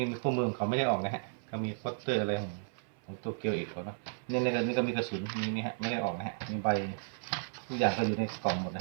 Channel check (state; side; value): silent; left; 55 dB below the other